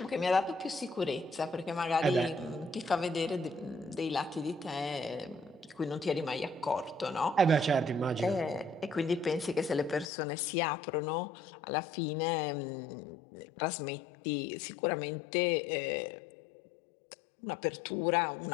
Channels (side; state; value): right; drops out; at 10.1 s